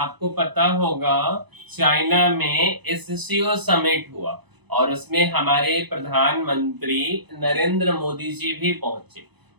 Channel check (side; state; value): left; late; 0.99 ms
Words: पता होगा चाइना में एससीओ समिट हुआ और उसमें हमारे प्रधानमंत्री नरेंद्र मोदी जी भी पहुंचे।